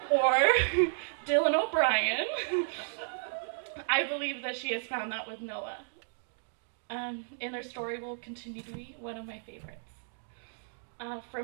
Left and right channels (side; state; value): left; silent; digital silence